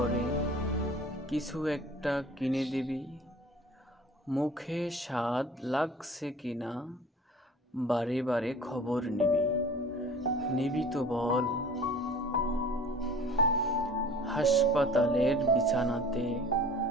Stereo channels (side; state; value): both; normal; correlation 0.45